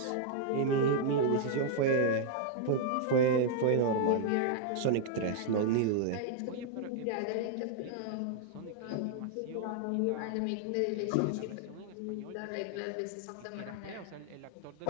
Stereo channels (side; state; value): both; different; correlation 0.00